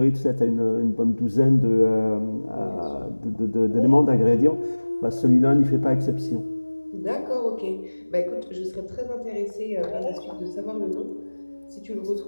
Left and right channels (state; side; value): inverted; both; correlation -1.00